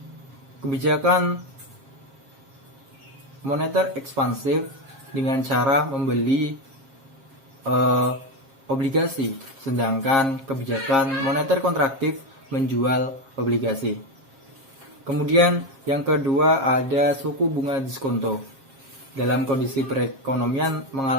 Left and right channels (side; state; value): left; late; 7.4 ms